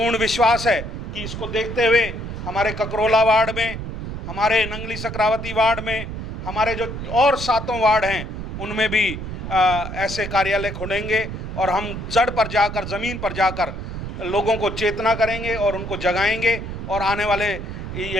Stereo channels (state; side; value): noise; right; rumble, 7 dB below the sound